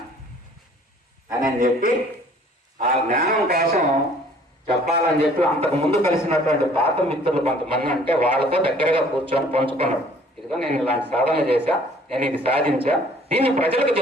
అని చెప్పి ఆ జ్ఞానం కోసం చెప్పాలని చెప్పి అంతకు ముందు కలిసినటువంటి పాత మిత్రులు కొంతమంది అంటే వాళ్ళతో దగ్గరగా కూర్చొని పంచుకున్నాడు. ఇదిగో నేను ఇలాంటి సాధన చేశా, నేను ఇది సాధించా, దీన్ని ప్రజలకు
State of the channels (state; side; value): normal; both; correlation 0.55